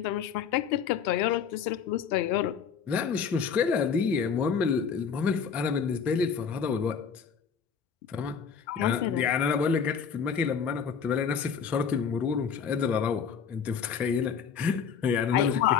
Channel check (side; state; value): right; quieter; 6.7 dB